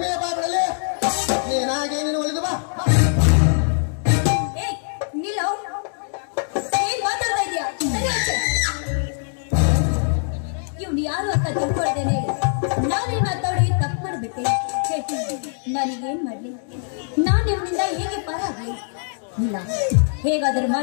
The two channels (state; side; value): silent; right; digital silence